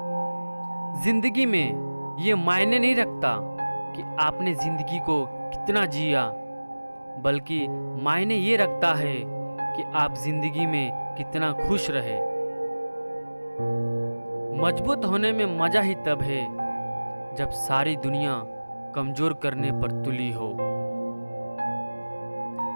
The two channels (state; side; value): inverted; both; correlation -1.00